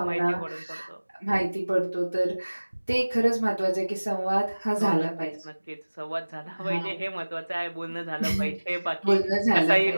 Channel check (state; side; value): inverted; both; correlation -1.00